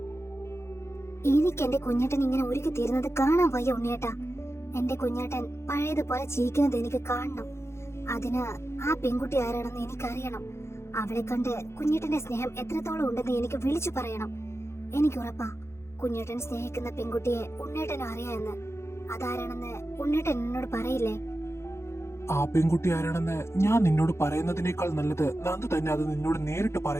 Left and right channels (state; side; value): late; right; 0.13 ms